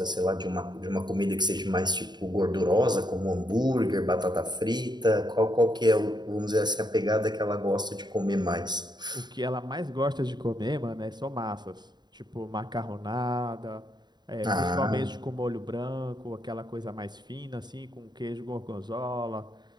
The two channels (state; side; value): late; left; 0.21 ms